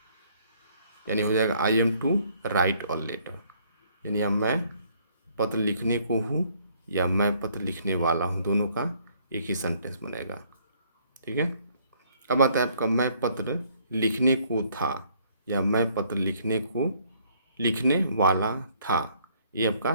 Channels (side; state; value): both; inverted; correlation -0.64